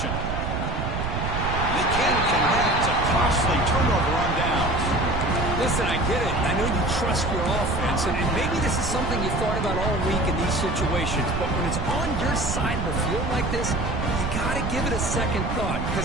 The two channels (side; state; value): right; noise; rumble, 2 dB below the sound